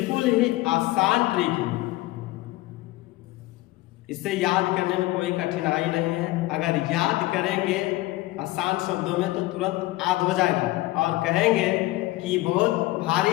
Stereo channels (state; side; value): quieter; right; 18.6 dB